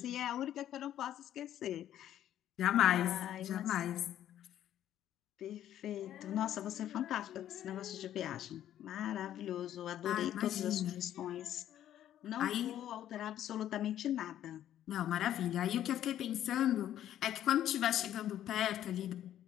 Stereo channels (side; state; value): right; quieter; 11.5 dB